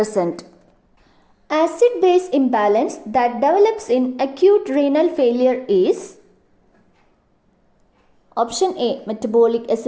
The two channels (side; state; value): both; identical; correlation 1.00